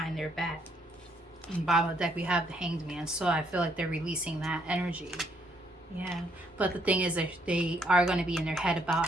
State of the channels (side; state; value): both; normal; correlation 0.71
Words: their back. In the bottom of the deck, we have the Hanged Man, so I feel like they're releasing that energy. Yeah, but the thing is that they are going to be in their head about